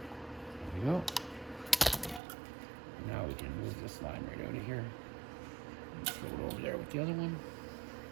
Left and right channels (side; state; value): left; drops out; at 2.2 s